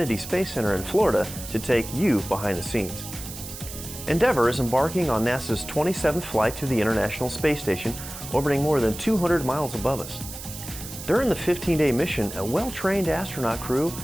Space Center in Florida to take you behind the scenes. Endeavour is embarking on NASA's 27th flight to the International Space Station, orbiting more than 200 miles above us. During the 15-day mission, a well-trained astronaut crew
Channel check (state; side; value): noise; right; hiss, 11 dB below the sound